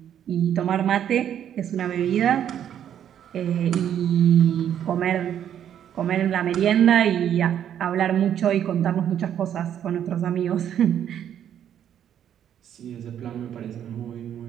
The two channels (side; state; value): left; quieter; 9.8 dB